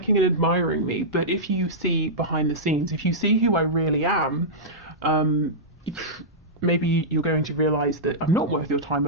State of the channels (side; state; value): both; normal; correlation -0.13